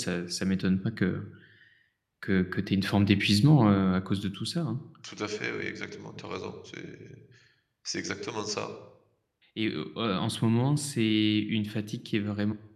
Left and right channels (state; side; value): identical; both; correlation 1.00